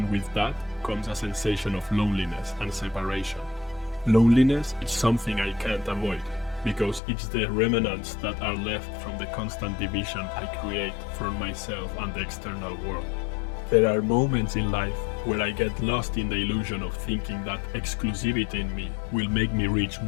with that comes a sensation of loneliness and separation. Loneliness is something I can't avoid, because it's the remnants that are left from the constant division I create from myself and the external world. There are moments in life where I get lost in the illusion of thinking that exclusivity in me will make me reach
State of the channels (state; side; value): drops out; right; at 7.0 s